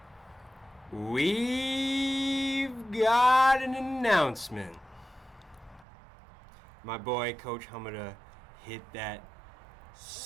gun. We've got an announcement. My boy, Coach Hommida, hit that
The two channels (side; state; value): left; drops out; at 5.9 s